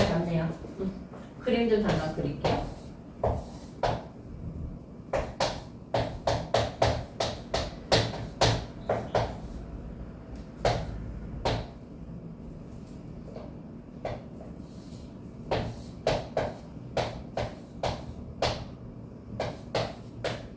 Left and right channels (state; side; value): identical; both; correlation 1.00